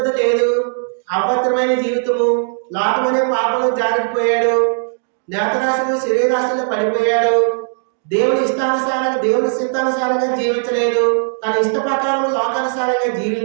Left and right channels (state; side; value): silent; left; 68 dB below the other